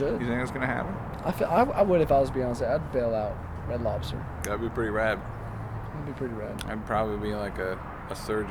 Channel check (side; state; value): both; identical; correlation 1.00